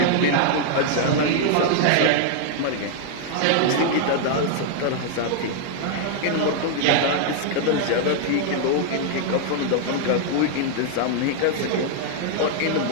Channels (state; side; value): different; both; correlation 0.00